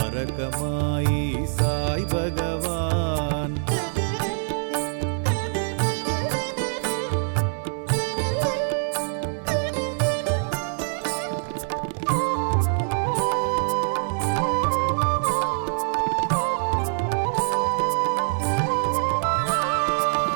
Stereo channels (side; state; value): left; silent; 62 dB below the other